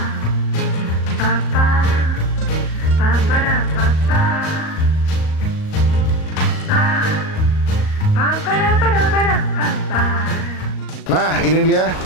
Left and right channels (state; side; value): late; right; 38 ms